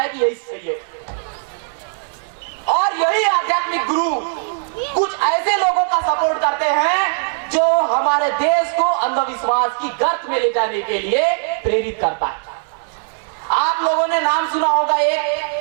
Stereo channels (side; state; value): left; silent; 66 dB below the other